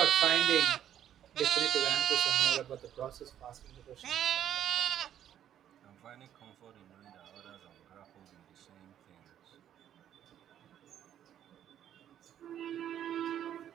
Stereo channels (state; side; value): quieter; left; 10.5 dB